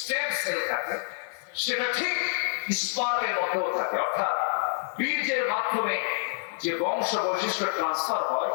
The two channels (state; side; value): silent; right; digital silence